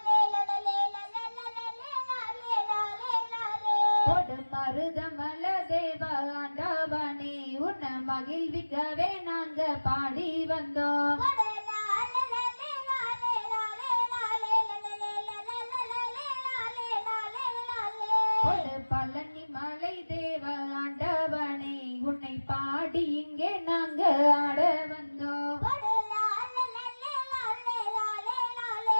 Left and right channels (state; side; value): inverted; both; correlation -1.00